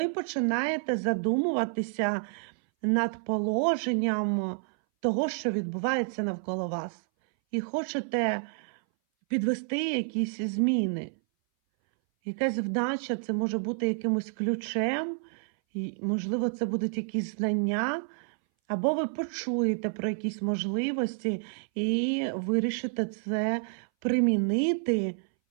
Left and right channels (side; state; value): left; silent; 58 dB below the other